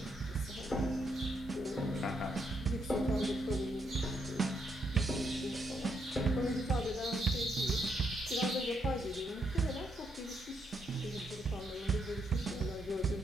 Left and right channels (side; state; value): both; normal; correlation 0.77